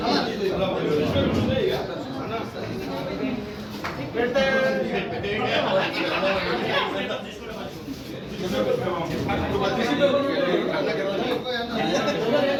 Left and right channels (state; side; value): identical; both; correlation 1.00